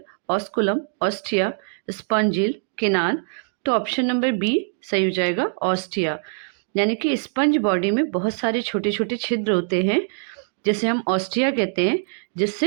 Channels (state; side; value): silent; left; digital silence